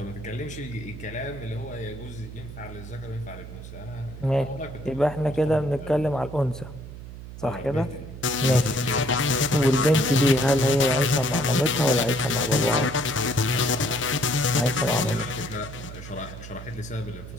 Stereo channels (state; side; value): noise; right; hum, 12 dB below the sound